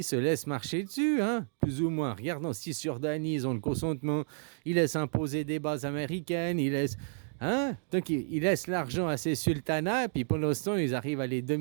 marcher dessus, hein, plus ou moins. Regarde en Cisjordanie, ils ont le consentement. Ils laissent imposer des bases américaines. Hein? Donc, ils laissent l'argent à ces sultanats, puis pendant ce temps, ils arrivent à les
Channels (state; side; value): silent; left; digital silence